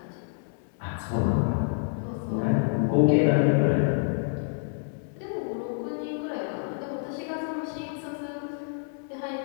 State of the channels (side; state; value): right; silent; digital silence